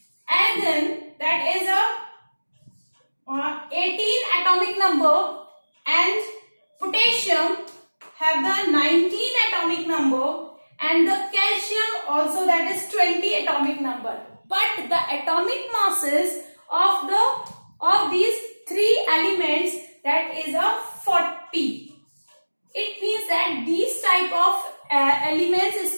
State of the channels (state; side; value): inverted; both; correlation -1.00